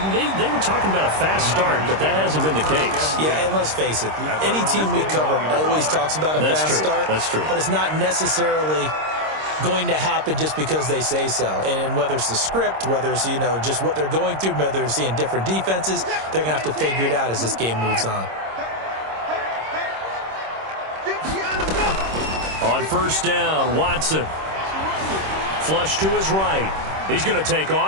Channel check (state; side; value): late; left; 26 ms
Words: they were talking about a fast start, but that hasn't been the case. Yeah, and let's face it, any team we cover always talks about a fast start. That's true. But it's not necessarily going to happen just because they say so. And whether it's the script, whether it's, you know, just what they're going through, whether they're seeing different defenses, they're going to have to figure it out as this game moves on. On 1st down, Watson. Flush to his right. He's going to take